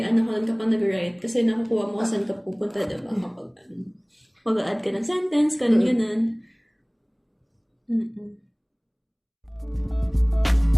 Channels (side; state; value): both; identical; correlation 1.00